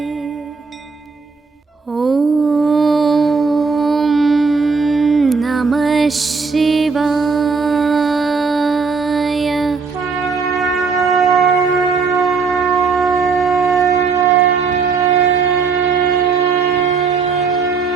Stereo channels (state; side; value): quieter; left; 4.9 dB